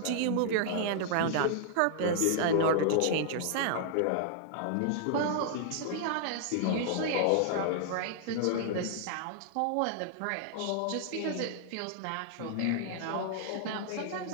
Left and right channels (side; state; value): both; different; correlation -0.01